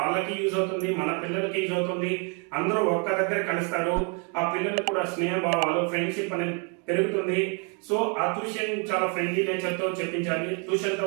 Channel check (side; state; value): left; quieter; 36.7 dB